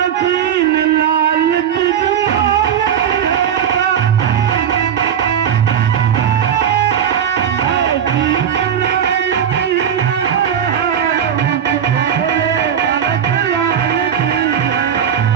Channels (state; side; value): quieter; left; 8.8 dB